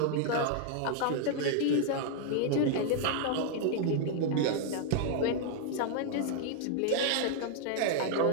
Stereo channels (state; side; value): different; both; correlation 0.00